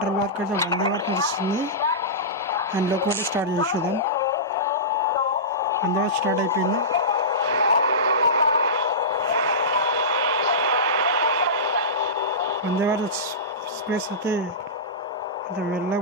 వరకు అయితే వందే భారత్ నడుస్తుంది. అండ్ లోపల స్టార్ట్ చేసేదాం. వందే భారత్ స్టార్ట్ అయిపోయింది. వందే భారత్ ఎక్స్ప్రెస్ అయితే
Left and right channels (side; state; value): both; normal; correlation -0.19